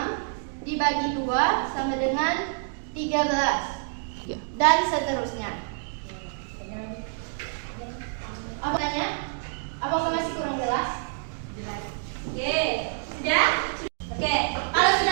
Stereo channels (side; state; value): left; silent; digital silence